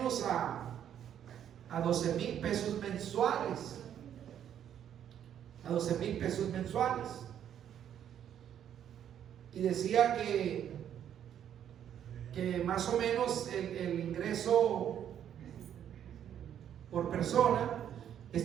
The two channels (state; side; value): quieter; left; 9.8 dB